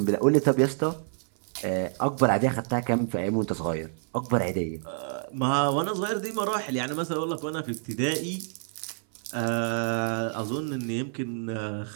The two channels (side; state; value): left; silent; 59 dB below the other